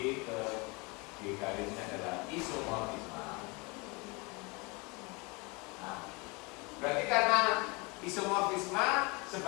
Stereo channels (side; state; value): right; quieter; 28.1 dB